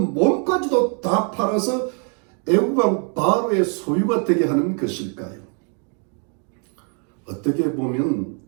몸까지도 다 팔아서 애굽 왕 바로의 소유가 되게 하는 것일까요? 어떻게 보면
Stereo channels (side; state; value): left; quieter; 39.8 dB